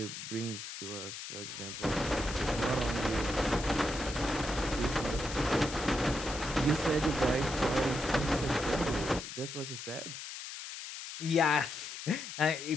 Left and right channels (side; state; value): left; noise; hiss, 9 dB below the sound